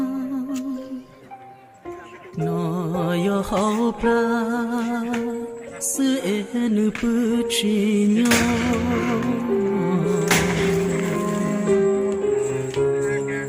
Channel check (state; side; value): identical; both; correlation 1.00